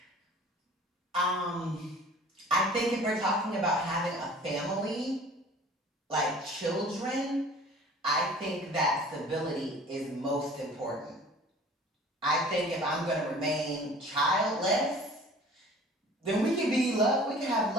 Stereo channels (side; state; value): both; normal; correlation 0.46